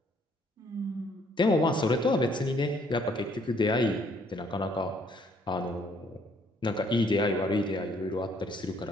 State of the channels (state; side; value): normal; both; correlation 0.65